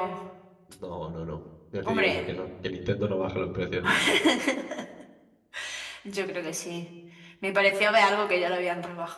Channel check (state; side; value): identical; both; correlation 1.00